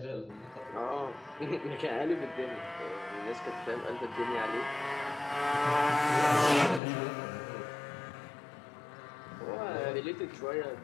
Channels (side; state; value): right; drops out; at 6.8 s